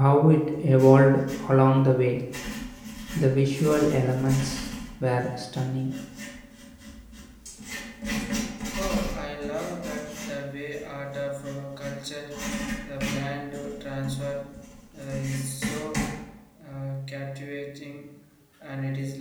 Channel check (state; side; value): identical; both; correlation 1.00